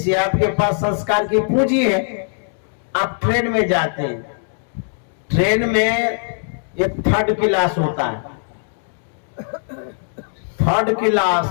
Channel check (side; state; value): right; silent; digital silence